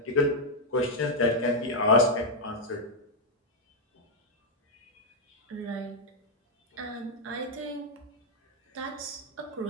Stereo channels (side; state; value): both; normal; correlation -0.02